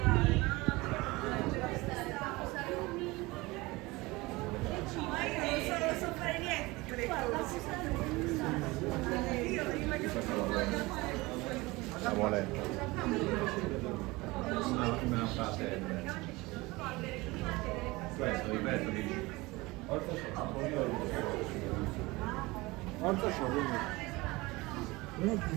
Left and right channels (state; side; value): quieter; left; 22.1 dB